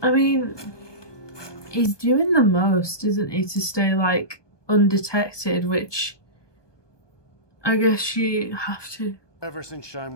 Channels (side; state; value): right; late; 1.2 ms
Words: mean, he's doing the most, isn't he, to stay, like, undetected, which I guess you have to. Ever since Shine